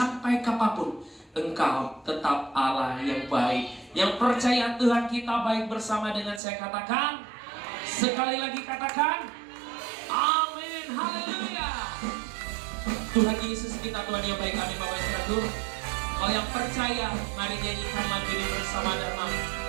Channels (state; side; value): drops out; left; at 6.4 s